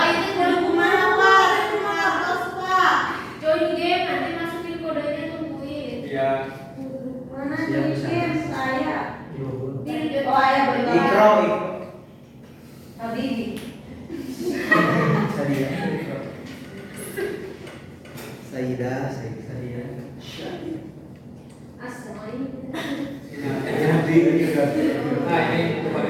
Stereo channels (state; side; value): identical; both; correlation 1.00